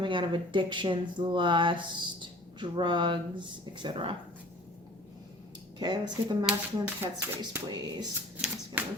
out of addictions, lust, drugs, etc. Okay, let's get the masculine's headspace, please.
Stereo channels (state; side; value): normal; both; correlation 0.47